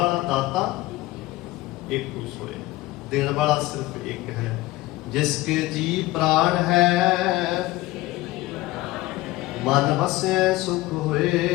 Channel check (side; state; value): right; quieter; 18.8 dB